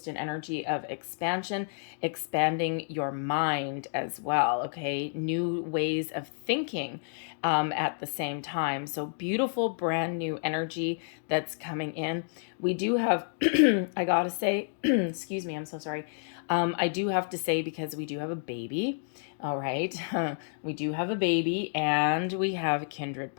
an energy of expansion, expanding your mind as well, okay? New ways of thinking at the same time. So beautiful, brand new energy that's coming in. We do have, I gotta say, excuse me, I'm so sorry. I do have to say, because we do have a baby, all right? We do have a baby, and we have a kindred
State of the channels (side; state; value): right; silent; digital silence